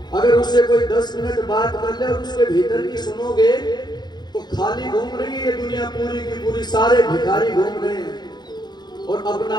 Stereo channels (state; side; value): late; right; 0.21 ms